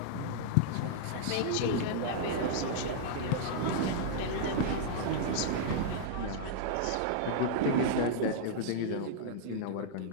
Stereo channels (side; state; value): both; different; correlation -0.02